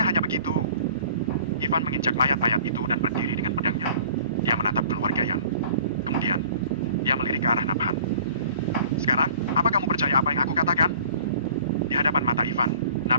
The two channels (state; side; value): inverted; both; correlation -0.48